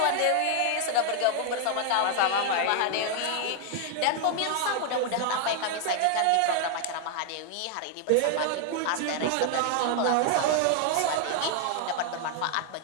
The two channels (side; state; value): both; different; correlation 0.00